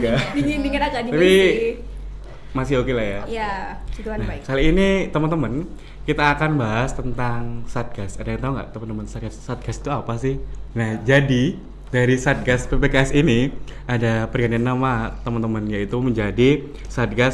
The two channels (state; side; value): identical; both; correlation 1.00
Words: Kak? ya. Dingin agak dingin Tapi sih. masih oke lah ya. Ya, situan Nah, baik. kali ini teman-teman kita akan bahas tentang Satgas. Ada yang tahu nggak teman-teman Satgas? Satgas itu apa sih? Nah, jadi dari Satgas PPKS ini ada pergantian nama teman-teman, yaitu menjadi